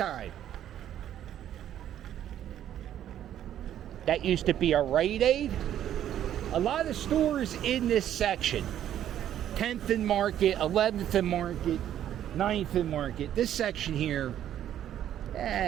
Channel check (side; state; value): left; quieter; 11.0 dB